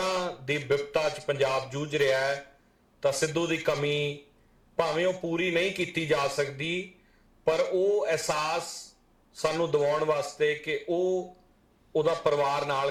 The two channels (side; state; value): both; identical; correlation 1.00